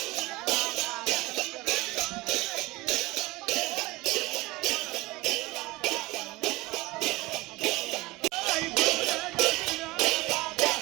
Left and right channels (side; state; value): left; quieter; 21.1 dB